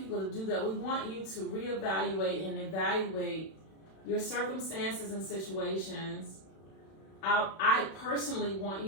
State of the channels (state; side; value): late; right; 31 ms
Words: to do that. We want you to reevaluate and evaluate your circumstances and situations. I personally want